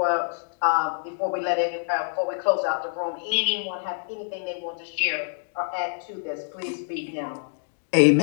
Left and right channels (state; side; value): silent; right; digital silence